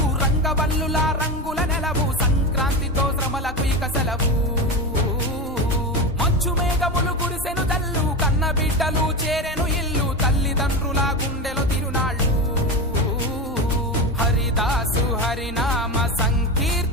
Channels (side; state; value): both; normal; correlation 0.20